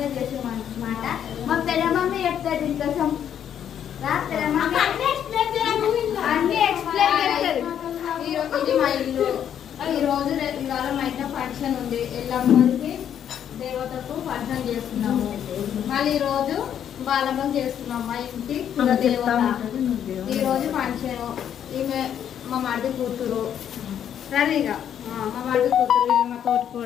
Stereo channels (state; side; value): quieter; right; 9.4 dB